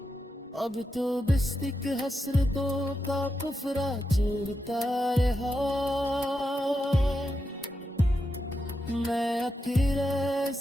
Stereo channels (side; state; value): both; normal; correlation 0.86